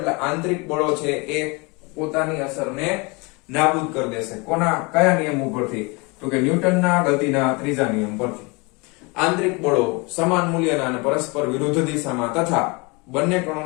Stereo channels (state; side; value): quieter; right; 28.2 dB